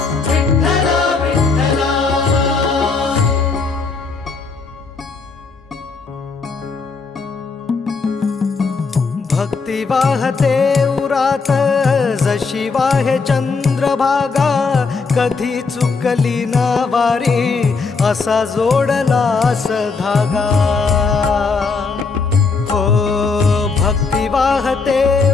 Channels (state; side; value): quieter; right; 4.6 dB